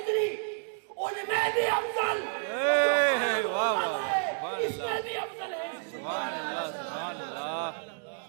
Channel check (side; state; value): left; silent; digital silence